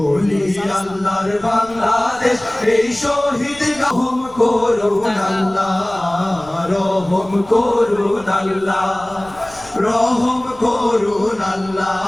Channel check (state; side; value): noise; left; rumble, 23 dB below the sound